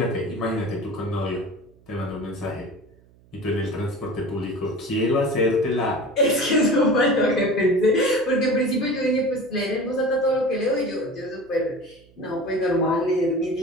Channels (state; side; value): noise; right; hum, 29 dB below the sound